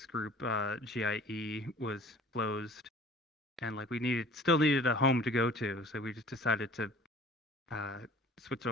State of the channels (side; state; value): both; normal; correlation 0.48